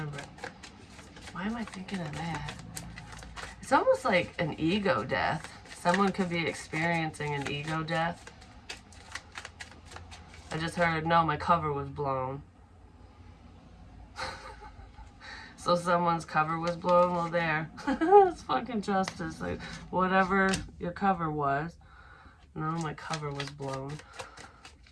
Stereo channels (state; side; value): identical; both; correlation 1.00